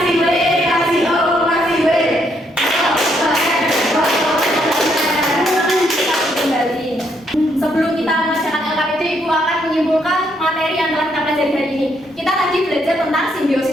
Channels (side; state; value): both; normal; correlation 0.73